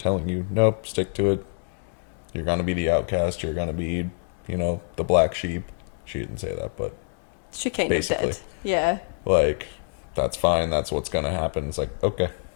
you, nope, stick to it. You're going to be the outcast. You're going to be, the black sheep. She didn't say that, but She kind basically. of did. Yeah. Like, that's fine. That's what's going to happen. It's like, okay.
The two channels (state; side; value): silent; right; digital silence